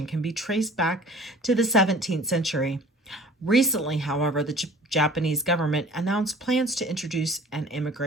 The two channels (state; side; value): normal; both; correlation 0.47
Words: can be traced back to the 17th century. Recently, however, the Japanese government announced plans to introduce an